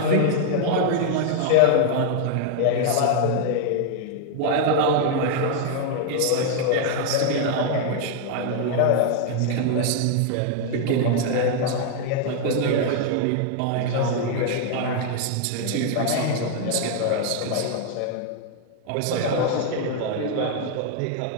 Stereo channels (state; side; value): different; both; correlation 0.00